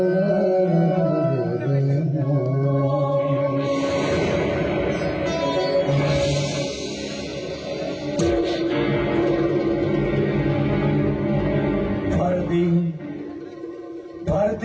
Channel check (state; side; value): identical; both; correlation 1.00